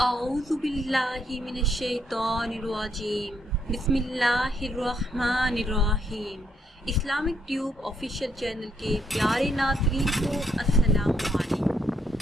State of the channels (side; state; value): both; normal; correlation 0.74